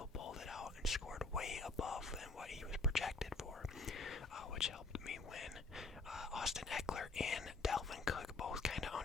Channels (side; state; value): right; quieter; 3.5 dB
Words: pulled it out and scored way above than what he was projected for, which helped me win. Austin Eckler and Dalvin Cook both kind of